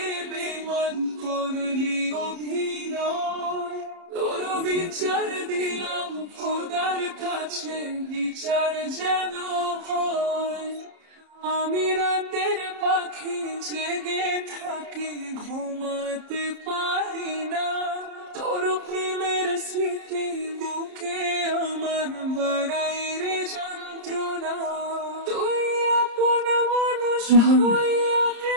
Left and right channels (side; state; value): left; late; 30 ms